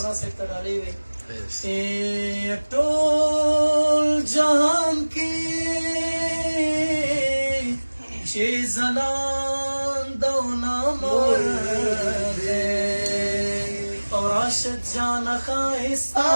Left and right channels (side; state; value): both; inverted; correlation -1.00